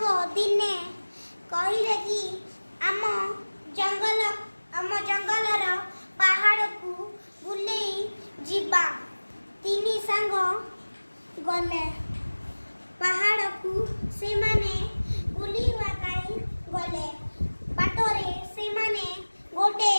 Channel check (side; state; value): both; inverted; correlation -1.00